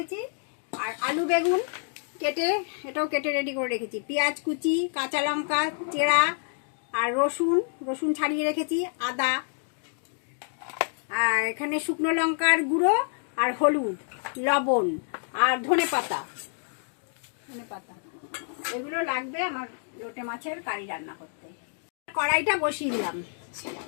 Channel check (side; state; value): right; silent; 59 dB below the other